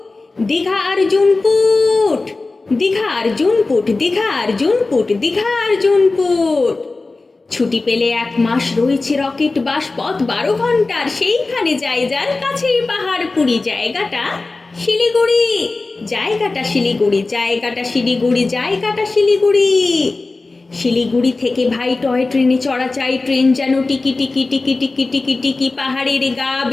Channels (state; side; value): quieter; right; 3.5 dB